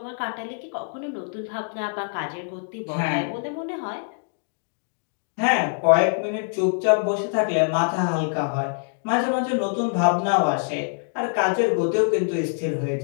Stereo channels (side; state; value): right; silent; digital silence